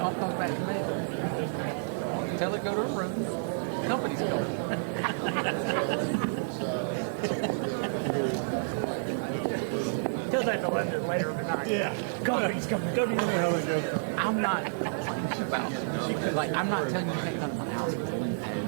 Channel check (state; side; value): silent; left; digital silence